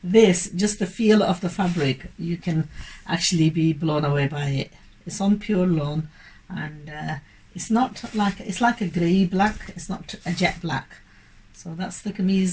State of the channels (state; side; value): identical; both; correlation 1.00